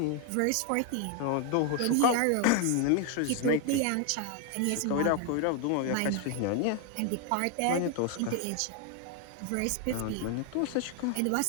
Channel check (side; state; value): both; different; correlation 0.00